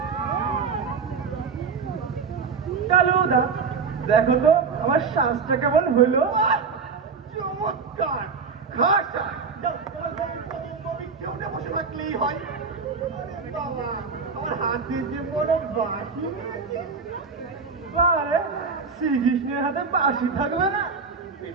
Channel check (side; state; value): left; quieter; 5.2 dB